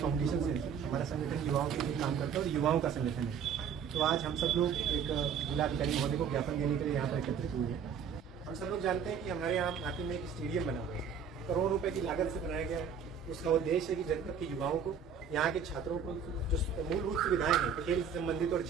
से, हमारा संगठन युवाओं के लिए काम करता है और युवाओं का संगठन है। तो आज हम सब लोग एक जिलाधिकारी महोदय को ज्ञापन देने के लिए यहाँ पर एकत्रित हुए हैं। हम सब लोग जानते हैं कि हमारे यहाँ नाटी में एक स्टेडियम बना हुआ है, करोड़ों रुपए की लागत से बनाया गया है। उसका उद्देश्य है कि जनपद के युवाओं को, यहाँ के छात्रों को जो मूलभूत सुविधाएं हैं खेल से संबंधित और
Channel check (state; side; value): quieter; left; 6.9 dB